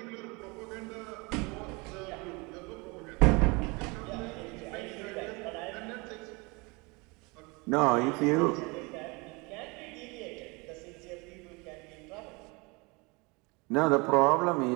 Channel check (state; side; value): quieter; left; 27.4 dB